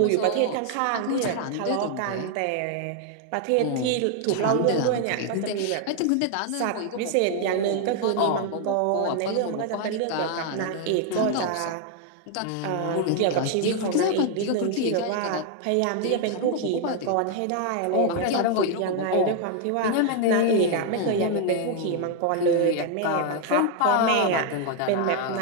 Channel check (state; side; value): different; both; correlation 0.00